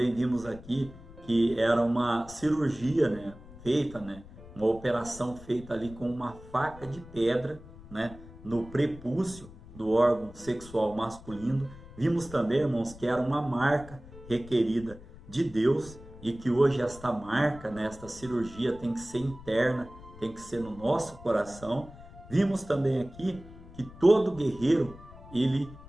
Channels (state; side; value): noise; left; rumble, 18 dB below the sound